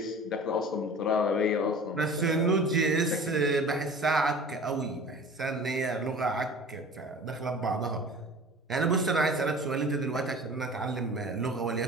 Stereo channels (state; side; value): normal; both; correlation 0.41